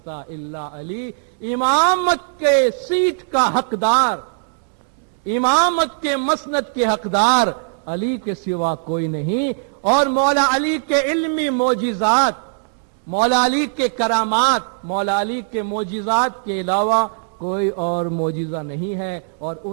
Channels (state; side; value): silent; left; digital silence